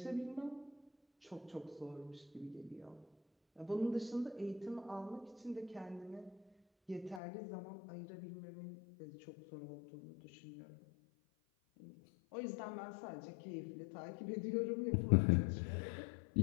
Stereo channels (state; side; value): drops out; right; at 7.2 s